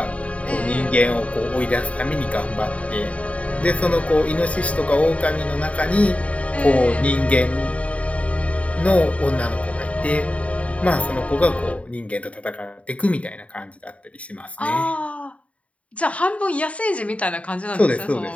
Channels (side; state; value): right; late; 0.065 ms